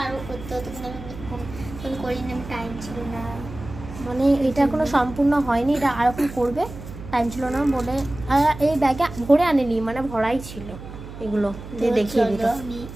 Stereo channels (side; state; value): right; noise; hum, 13 dB below the sound